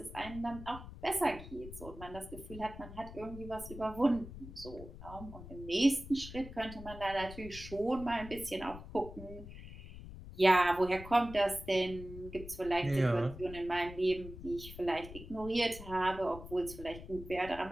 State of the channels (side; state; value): left; noise; rumble, 13 dB below the sound